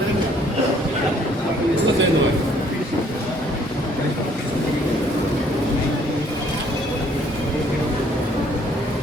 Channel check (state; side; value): normal; both; correlation 0.62